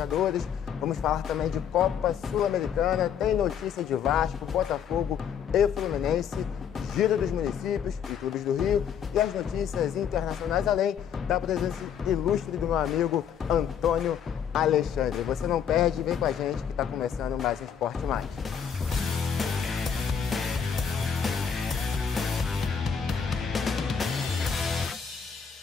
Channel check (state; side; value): quieter; right; 7.8 dB